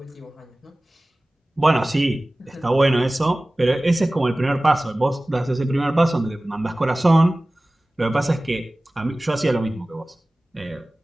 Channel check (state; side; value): normal; both; correlation 0.98